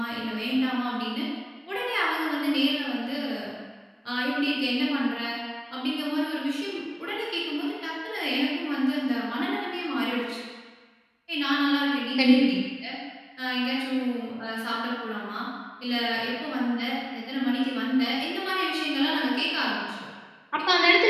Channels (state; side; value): identical; both; correlation 1.00